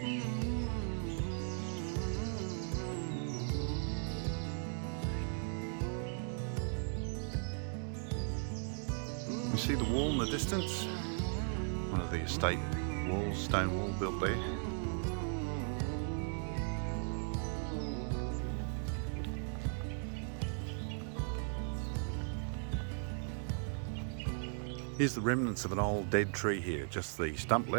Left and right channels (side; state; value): left; silent; 53 dB below the other